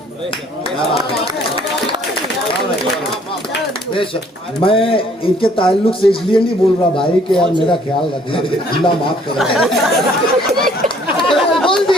मैं इनके ताल्लुक से इसलिए नहीं बोल रहा भाई कि यार मेरा ख्याल रखना, अल्लाह माफ करे।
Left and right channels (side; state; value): both; normal; correlation 0.60